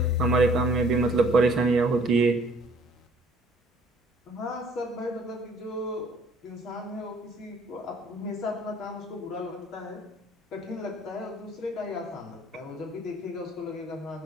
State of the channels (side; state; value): both; normal; correlation 0.58